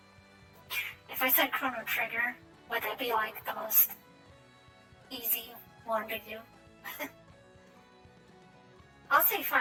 if I said Chrono Trigger, would that be like the most easy one to do? I'll say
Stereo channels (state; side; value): identical; both; correlation 1.00